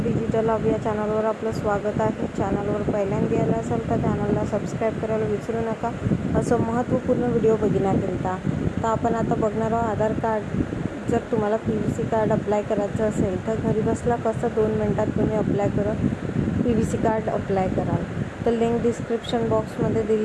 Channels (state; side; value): identical; both; correlation 1.00